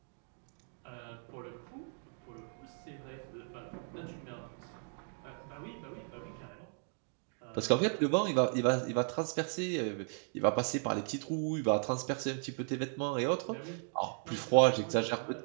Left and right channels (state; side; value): silent; left; 54 dB below the other